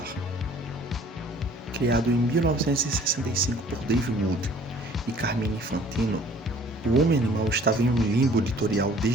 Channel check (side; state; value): both; normal; correlation 0.54